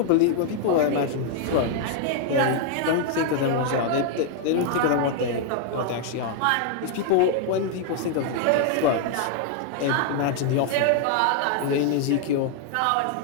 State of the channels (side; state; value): both; different; correlation 0.00